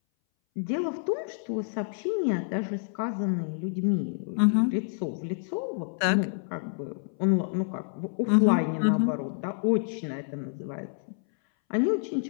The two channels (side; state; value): right; silent; 59 dB below the other